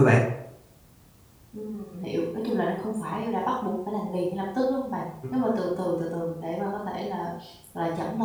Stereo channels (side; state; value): both; identical; correlation 1.00